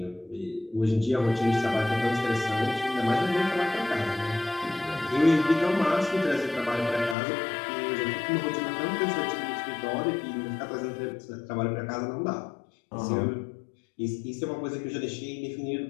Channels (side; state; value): right; drops out; at 7.2 s